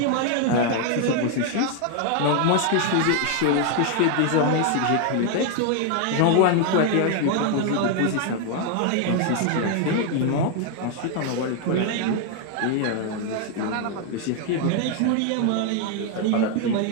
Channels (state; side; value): different; both; correlation 0.00